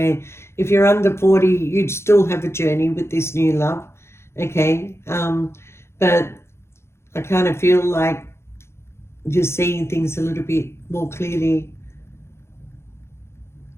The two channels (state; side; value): late; right; 0.13 ms